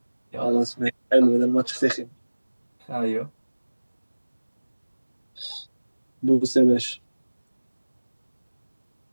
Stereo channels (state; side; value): inverted; both; correlation -1.00